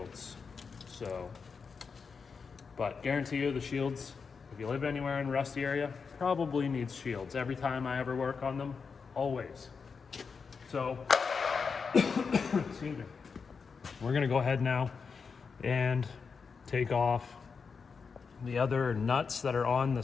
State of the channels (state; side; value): quieter; right; 5.4 dB